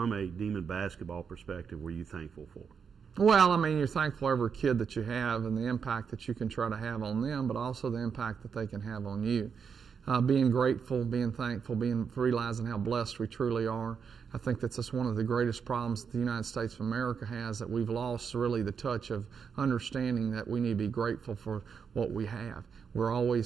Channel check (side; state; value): left; quieter; 6.5 dB